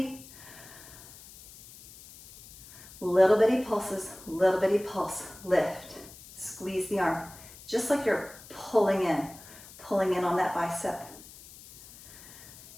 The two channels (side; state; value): left; noise; hiss, 19 dB below the sound